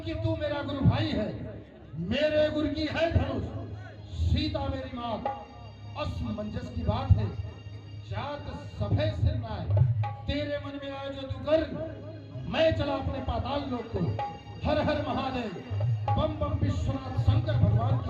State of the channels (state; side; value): identical; both; correlation 1.00